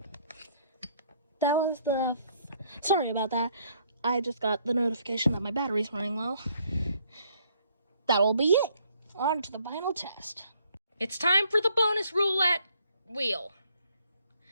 That was the... Sorry about that. I just got the notification that my battery's running low. That'll be it. On to the final test. It's time for the bonus roulette wheel.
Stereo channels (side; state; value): both; inverted; correlation -0.67